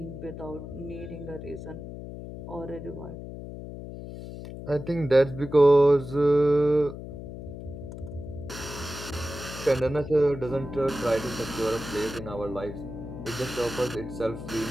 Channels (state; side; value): noise; left; hum, 10 dB below the sound